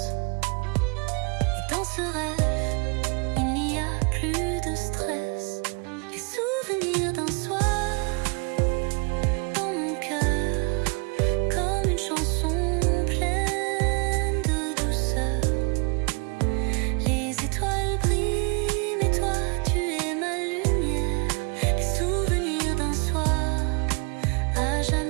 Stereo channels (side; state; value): left; quieter; 33.7 dB